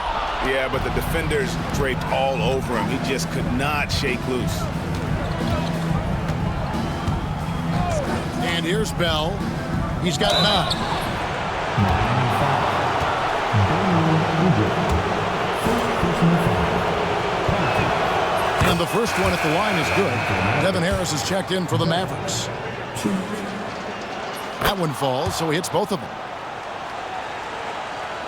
Yeah, but the defenders draped all over him. He just could not shake loose. And here's Bell. He's got 9. And the first one at the line is good. Devin Harris is checked in for the Mavericks. That one falls, so he hits both of them.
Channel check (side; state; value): both; identical; correlation 1.00